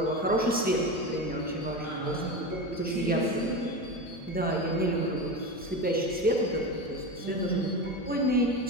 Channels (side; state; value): left; noise; hum, 25 dB below the sound